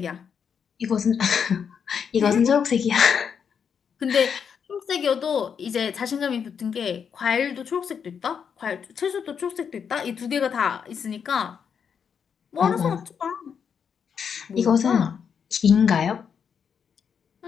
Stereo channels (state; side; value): quieter; right; 7.1 dB